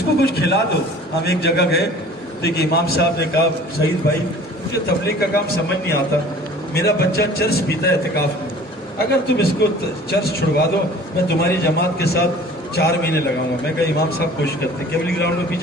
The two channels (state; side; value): normal; both; correlation 0.47